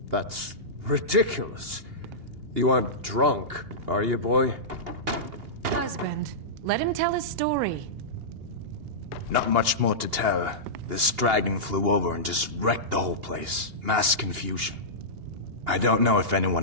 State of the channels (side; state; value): left; late; 2.8 ms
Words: That's ridiculous. You aren't drunk, are you, boy? Husband, let him tell his story. Not much more to tell. This dragon flew over and just wrecked the whole place. Mass confusion. I don't know if